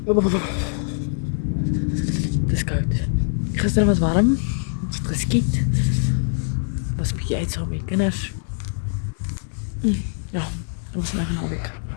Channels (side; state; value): right; silent; digital silence